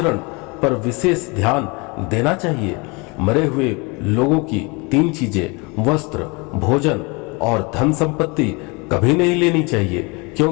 पर विशेष ध्यान देना चाहिए। मरे हुए लोगों की 3 चीजें वस्त्र, भोजन और धन संपत्ति कभी नहीं लेनी चाहिए,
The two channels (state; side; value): quieter; right; 28.4 dB